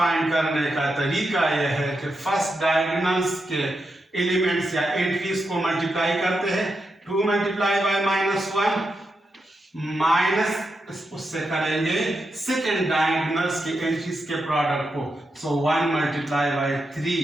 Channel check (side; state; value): both; normal; correlation 0.86